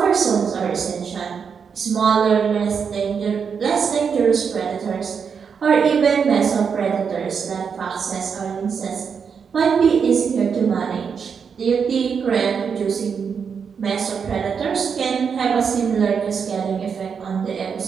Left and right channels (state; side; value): quieter; left; 6.4 dB